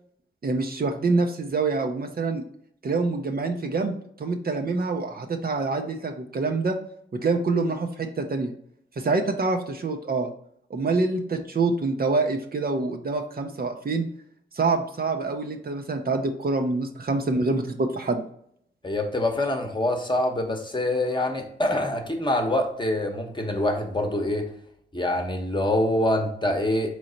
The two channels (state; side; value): normal; both; correlation 0.49